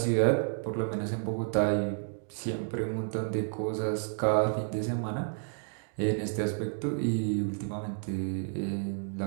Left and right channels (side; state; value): left; silent; 57 dB below the other